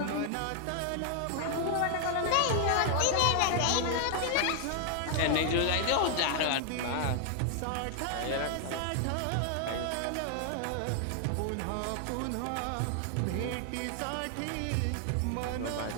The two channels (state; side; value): different; both; correlation 0.00